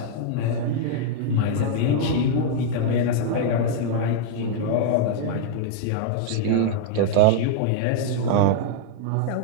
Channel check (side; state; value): both; different; correlation -0.01